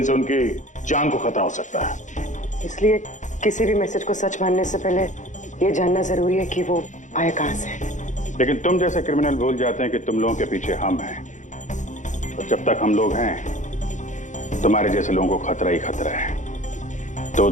उनकी जान को खतरा हो सकता है। इसलिए किसी भी मैसेज को सच मानने से पहले ये जानना जरूरी है कि वो आया कहां से। लेकिन तुम जैसे क्रिमिनल भूल जाते हैं कि तुम लोगों के पीछे हम हैं, और जब तक हम लोग हैं तुम्हारे जैसे लोगों को खतरा ही खतरा है।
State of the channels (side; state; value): right; late; 0.36 ms